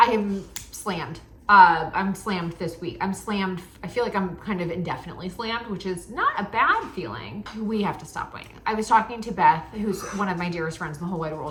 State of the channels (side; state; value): both; identical; correlation 1.00